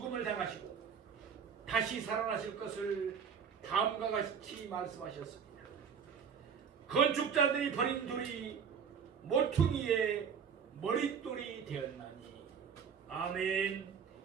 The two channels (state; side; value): quieter; left; 6.9 dB